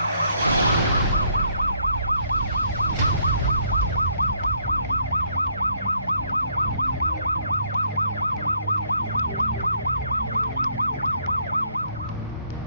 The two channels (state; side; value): inverted; both; correlation -0.68